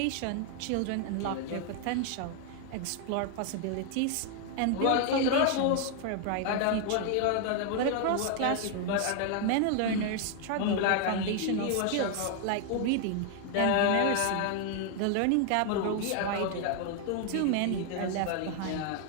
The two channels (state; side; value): different; both; correlation 0.00